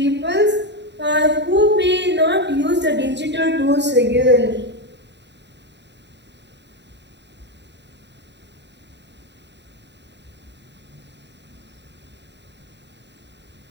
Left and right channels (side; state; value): left; late; 0.51 ms